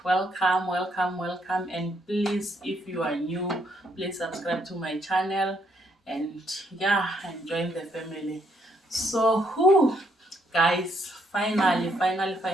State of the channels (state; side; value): normal; both; correlation 0.72